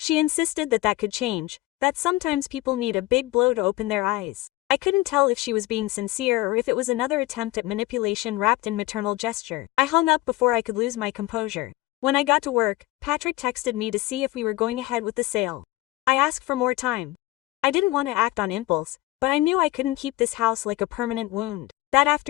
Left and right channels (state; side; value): quieter; right; 18.5 dB